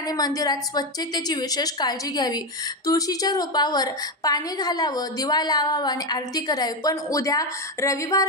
मंदिरात स्वच्छतेची विशेष काळजी घ्यावी. तुळशीच्या रोपावर पाणी घालावं, दिवा लावावा आणि आरती करावी. पण उद्या रविवार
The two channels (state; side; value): normal; both; correlation 0.11